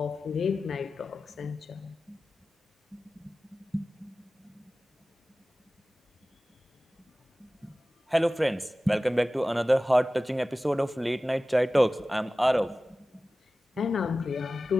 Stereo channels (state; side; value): normal; both; correlation 0.96